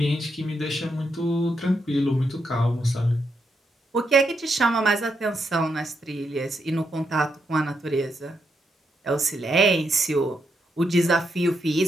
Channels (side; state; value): both; normal; correlation 0.81